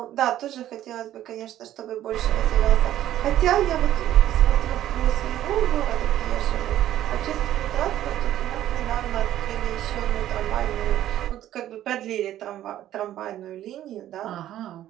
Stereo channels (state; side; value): quieter; left; 12.6 dB